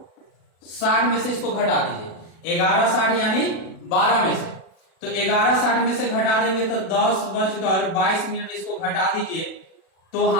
में से इसको घटा दीजिए। 11:60 यानी 12 में से, तो 11:60 में से घटा देंगे तो 10:22 इसको घटा दीजिए, तो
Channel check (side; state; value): right; late; 36 ms